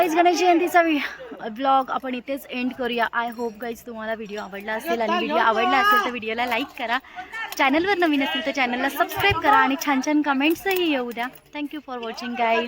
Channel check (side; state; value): both; identical; correlation 1.00